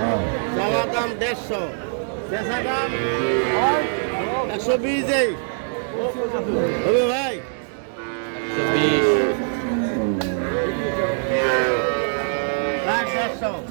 চাওয়া দাম 150, বেচা দাম 120 এই হবে ভাই। 120। প্রায় 150,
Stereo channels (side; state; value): left; silent; 64 dB below the other